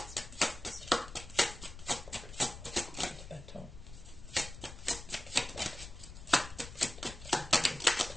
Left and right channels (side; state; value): left; noise; rumble, 13 dB below the sound